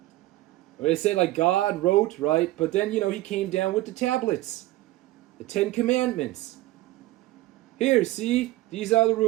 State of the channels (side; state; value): left; quieter; 17.2 dB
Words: they say God wrote, right? But then, he came down with the tablets. The 10 Commandments. Here, see? These are the